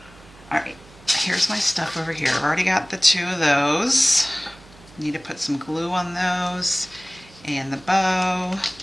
All right, here's my stuff over here. I've already got the 2 of those. Need to put some glue on those and the bow,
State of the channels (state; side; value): noise; right; hum, 24 dB below the sound